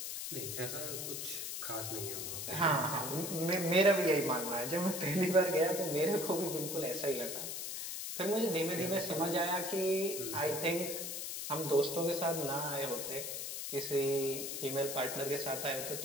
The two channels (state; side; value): noise; left; hiss, 5 dB below the sound